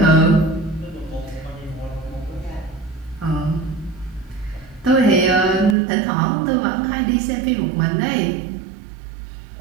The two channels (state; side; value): drops out; left; at 5.8 s